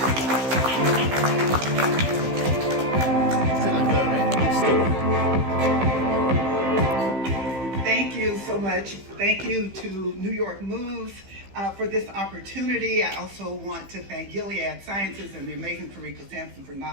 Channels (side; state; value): left; late; 15 ms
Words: Thank you so much. Thank you to New York Moves for this opportunity. I also want to thank Gilead Sciences and the amazing Karika Sampson for